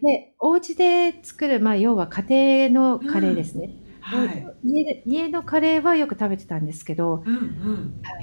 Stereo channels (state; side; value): inverted; both; correlation -1.00